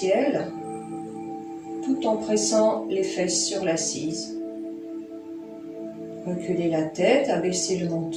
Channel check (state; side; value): identical; both; correlation 1.00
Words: tout en pressant les fesses sur l'assise. Reculez la tête, abaissez le